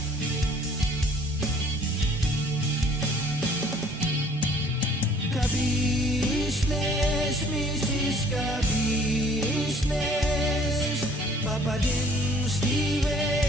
Ka-business, Mrs. Ka-business, Papa din Steve,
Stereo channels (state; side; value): normal; both; correlation 0.56